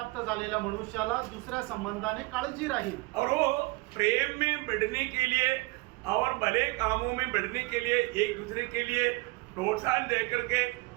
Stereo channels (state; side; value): quieter; left; 23.8 dB